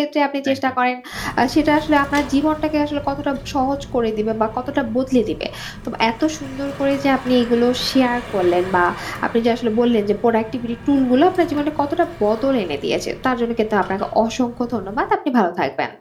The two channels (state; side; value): identical; both; correlation 1.00